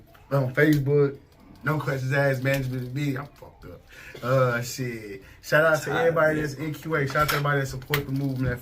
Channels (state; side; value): identical; both; correlation 1.00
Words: Facebook, No Questions Asked Management B. I'm fucked up. Shit. Shout out to everybody that's NQA. Shout out to everybody that support the movement, that